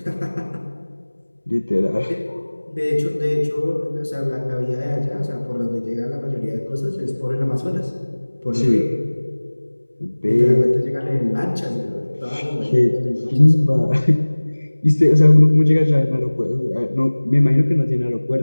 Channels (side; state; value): both; inverted; correlation -1.00